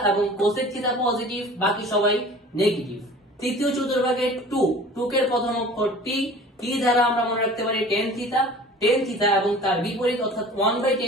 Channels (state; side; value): normal; both; correlation 0.44